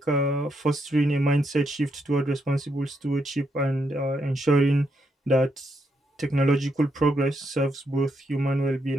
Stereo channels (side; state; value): both; normal; correlation 0.79